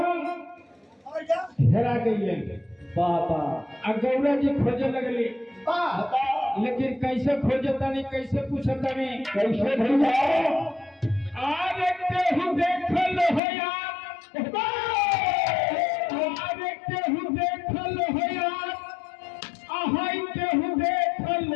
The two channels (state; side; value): drops out; right; at 13.4 s